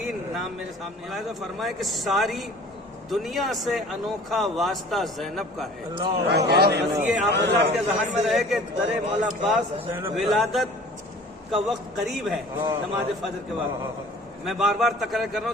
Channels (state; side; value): normal; both; correlation 0.47